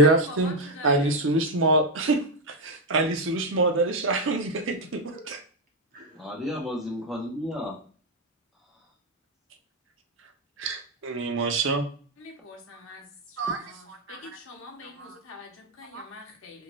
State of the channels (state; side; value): normal; both; correlation 0.05